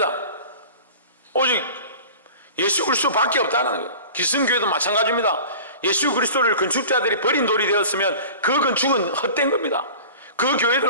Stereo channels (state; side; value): inverted; both; correlation -0.39